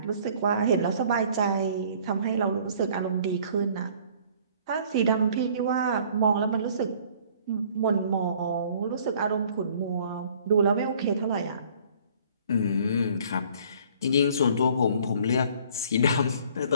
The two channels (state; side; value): inverted; both; correlation -0.56